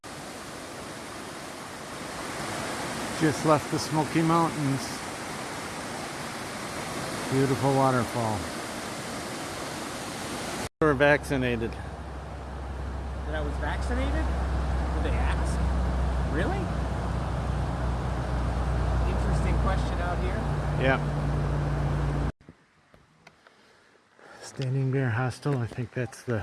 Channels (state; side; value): identical; both; correlation 1.00